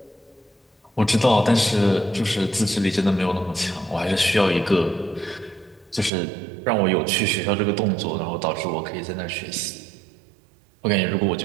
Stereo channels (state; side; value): drops out; left; at 6.1 s